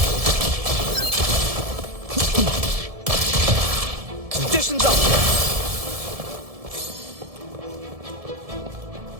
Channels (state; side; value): late; left; 1.7 ms